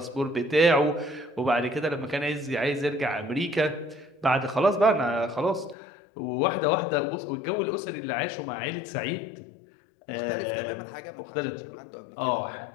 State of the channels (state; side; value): drops out; right; at 5.8 s